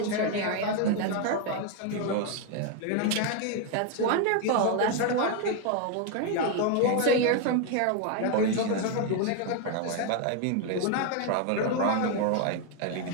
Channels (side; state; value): both; different; correlation 0.01